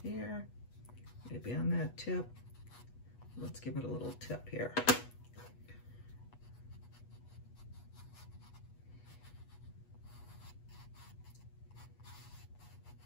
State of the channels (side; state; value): right; late; 8.2 ms